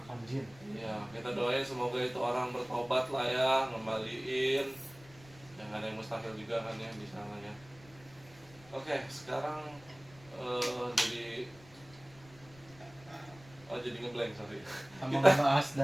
jin. Ya, kita doain semoga itu orang bertobat lah ya, ngembaliin. Yang ada yang mustahil juga kan ya di sana ya. Oke, sekarang jadi ngeblank, sorry. Sama ngebahas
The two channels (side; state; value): left; noise; rumble, 23 dB below the sound